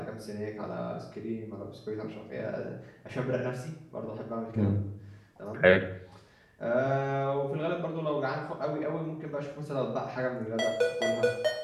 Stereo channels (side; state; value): both; identical; correlation 1.00